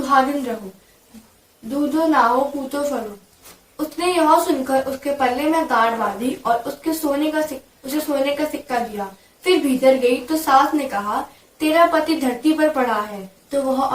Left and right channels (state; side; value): identical; both; correlation 1.00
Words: रहो, दूधो नाओ पूतो फलो। उसने यह सुनकर उसके पल्ले में गांठ बांधी और उसे सोने का सिक्का दिया। फिर भीतर गई तो सास ने कहा, तेरा पति धरती पर पड़ा है। तो वह